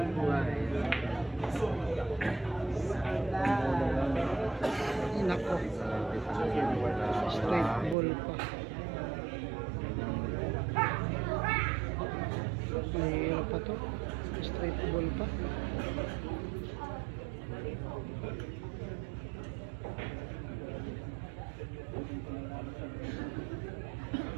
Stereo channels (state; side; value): drops out; left; at 8.0 s